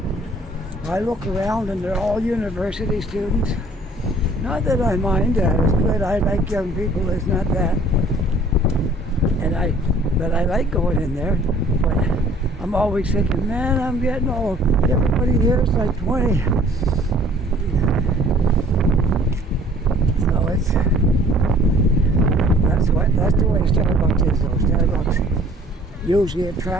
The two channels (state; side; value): normal; both; correlation 0.54